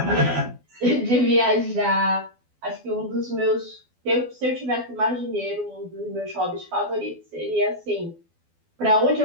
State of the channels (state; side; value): late; left; 12 ms